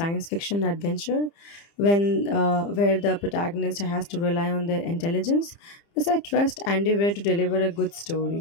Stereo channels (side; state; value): right; late; 30 ms